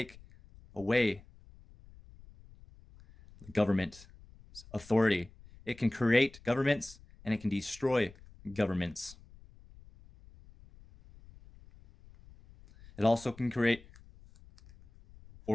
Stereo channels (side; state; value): left; noise; rumble, 23 dB below the sound